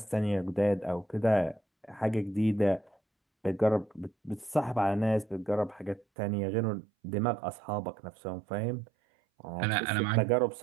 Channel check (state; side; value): drops out; left; at 6.1 s